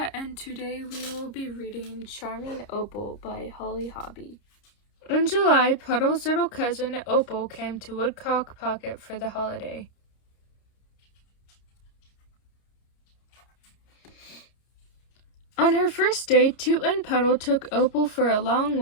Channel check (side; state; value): right; late; 30 ms